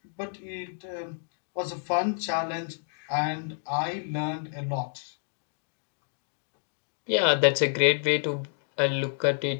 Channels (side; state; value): right; silent; digital silence